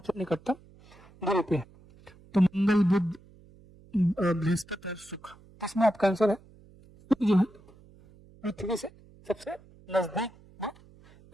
निकटतम दूरी पे है। तो मंगल, बुध, बृहस्पति और शुक्र। इसमें आपका आंसर है शुक्र जो है पृथ्वी से सबसे नजदीक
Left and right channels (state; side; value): noise; right; hum, 25 dB below the sound